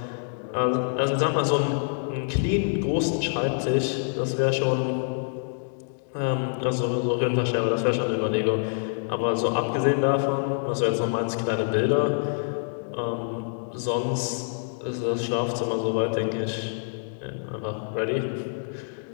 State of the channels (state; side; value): silent; right; digital silence